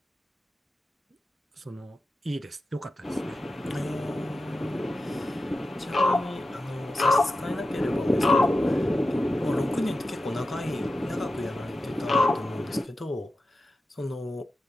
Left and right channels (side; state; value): both; normal; correlation 0.92